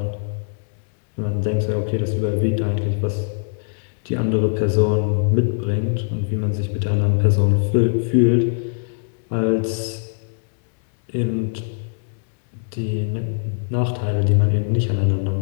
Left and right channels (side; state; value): right; silent; 65 dB below the other